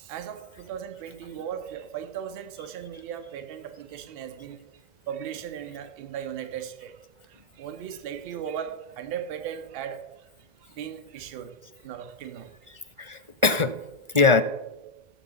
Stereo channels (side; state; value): left; late; 1.4 ms